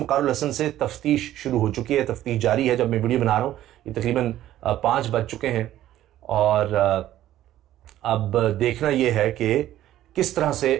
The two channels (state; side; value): quieter; left; 13.2 dB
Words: वक़ारुल हसन से तफ्तीश शुरू हो चुकी है। तफ्तीश जारी है। जब मैं वीडियो बना रहा हूँ ये तकरीबन 5 बज चुके हैं और अब देखना यह है कि किस तरह